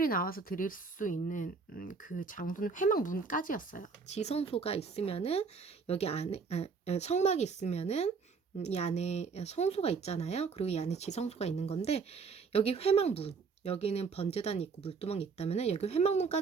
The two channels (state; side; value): quieter; left; 5.1 dB